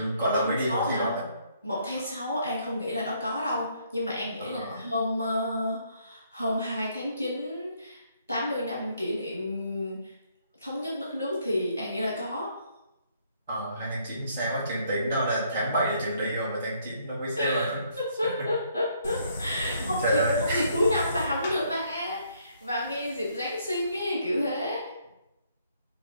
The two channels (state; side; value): inverted; both; correlation -0.69